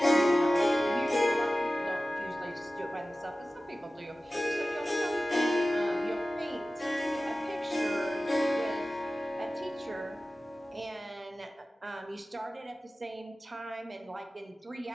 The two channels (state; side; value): normal; both; correlation 0.96